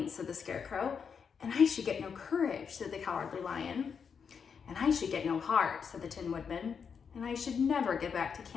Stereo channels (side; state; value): right; quieter; 6.5 dB